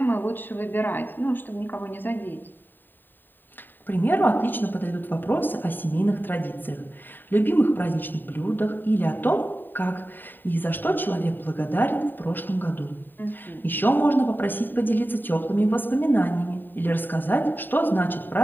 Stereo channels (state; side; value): late; right; 0.092 ms